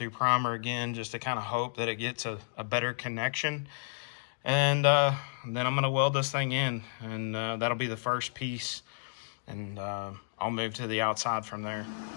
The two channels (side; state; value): right; silent; digital silence